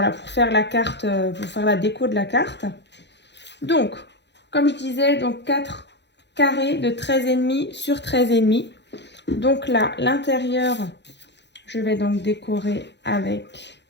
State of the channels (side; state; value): right; late; 0.51 ms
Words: faire la carte, pour faire la déco de la carte. Donc, comme je disais, donc 4 carrés de 13,5 sur 13,5. Donc là, l'intérieur, je vais donc décorer avec